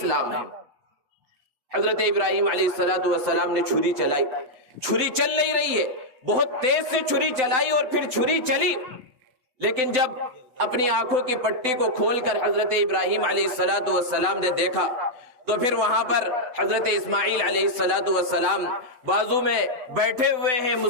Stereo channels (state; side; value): late; left; 7.9 ms